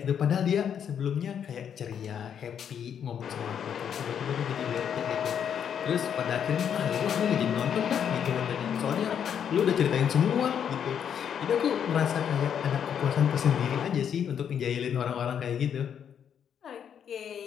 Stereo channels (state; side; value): quieter; right; 8.4 dB